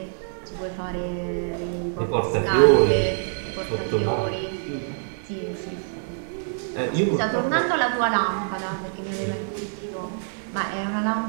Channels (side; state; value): left; silent; digital silence